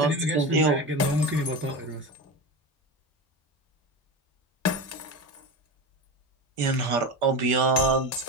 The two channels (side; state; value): both; normal; correlation 0.23